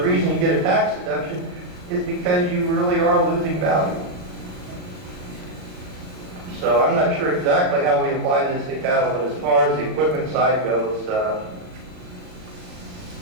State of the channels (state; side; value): late; left; 39 ms